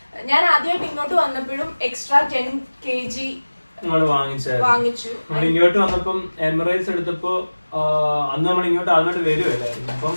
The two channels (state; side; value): inverted; both; correlation -1.00